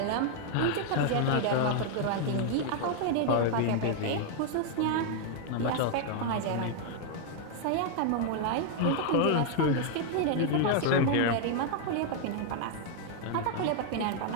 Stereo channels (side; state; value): both; different; correlation 0.00